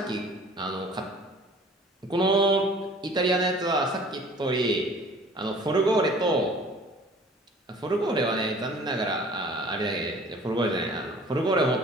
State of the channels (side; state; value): both; normal; correlation 0.49